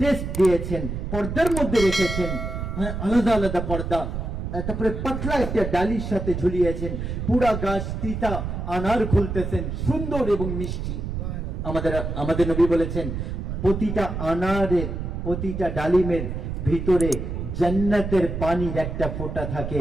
টেস্ট দিয়েছেন, পর্দার মধ্যে রেখেছেন, হ্যাঁ, আলাদা আলাদা পর্দা, তারপরে পাতলা একটা ডালির সাথে ঝুলিয়েছেন, পুরা গাছ তিতা, আনার খুলতেছেন, সুন্দর এবং মিষ্টি। আমাদের নবী বলেছেন, প্রতিটা আনারের, প্রতিটা ডালিমের ভিতরে জান্নাতের পানির একটা ফোঁটা থাকে,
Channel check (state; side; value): noise; right; rumble, 4 dB below the sound